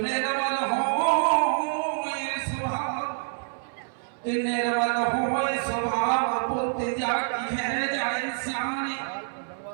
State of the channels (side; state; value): left; silent; 60 dB below the other